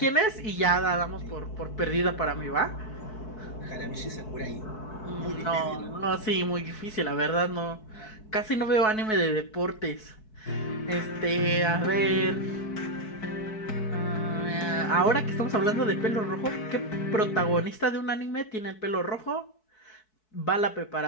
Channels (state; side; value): late; right; 4.6 ms